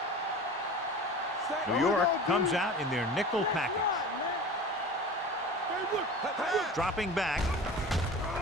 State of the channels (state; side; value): normal; both; correlation 0.36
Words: New York comes out in their nickel package. Dropping back.